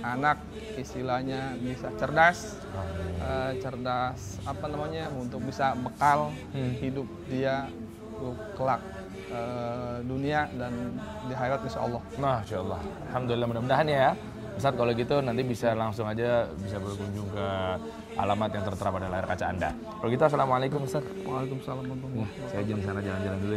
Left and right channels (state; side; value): identical; both; correlation 1.00